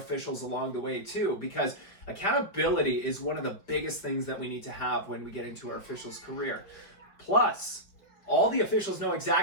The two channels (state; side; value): late; right; 5.3 ms